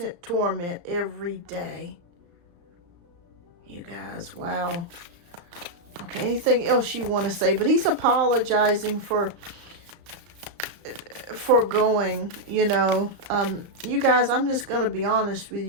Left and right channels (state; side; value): late; left; 34 ms